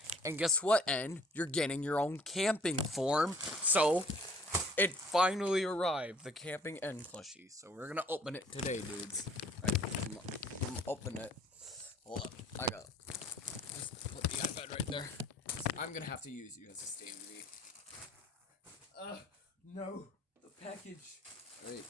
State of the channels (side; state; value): both; normal; correlation 0.57